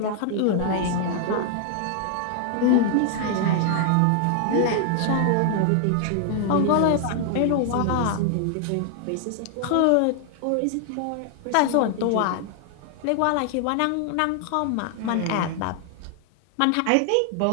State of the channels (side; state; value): both; different; correlation 0.00